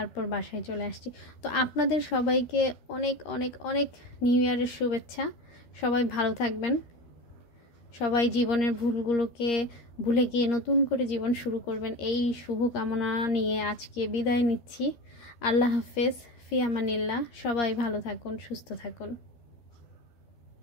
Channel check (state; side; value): late; right; 13 ms